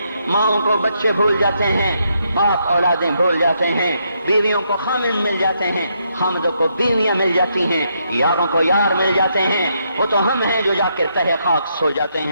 ماؤں کو بچے بھول جاتے ہیں، باپ اولادیں بھول جاتے ہیں، بیویوں کو خامن مل جاتے ہیں، خامدوں کو بیویاں مل جاتی ہیں، یاروں کو یار مل جاتے ہیں۔ وہ تو ہم ہیں جو جا کے تہہ خاک سو جاتے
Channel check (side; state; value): both; inverted; correlation -0.77